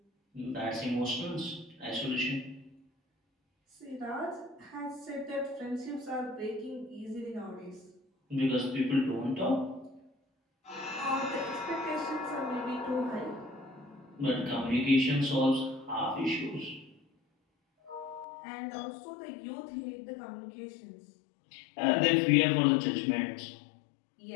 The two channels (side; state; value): right; drops out; at 18.2 s